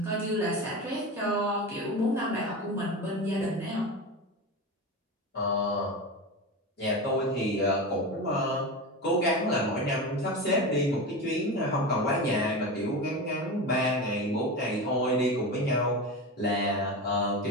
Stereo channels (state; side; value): normal; both; correlation 0.23